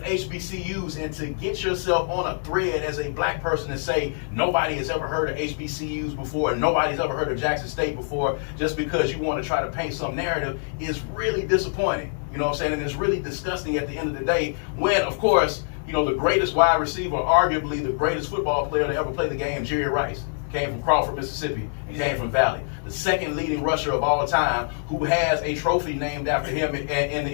HBCUs. And to get yourself on a thread as a black person and say nobody has ever heard of HBCUs before and nobody's ever heard of Jackson State before just because you want to try to paint some narrative is really disappointing. You know what I'm saying? And it's really disgusting at the end of the day when, of course, you know, the greatest wide receiver, arguably the greatest football player to ever play the game, Jerry Rice, came from Crawford, Mississippi, and came from Valley. The second leading rusher of all time who has a trophy named after him in the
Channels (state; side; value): silent; right; 62 dB below the other